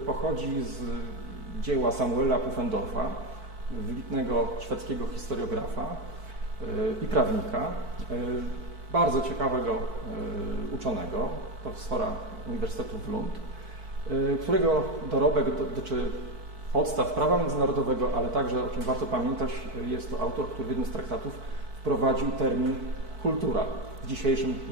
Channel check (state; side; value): late; left; 4.5 ms